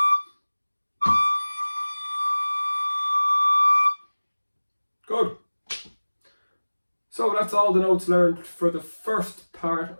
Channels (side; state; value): both; inverted; correlation -1.00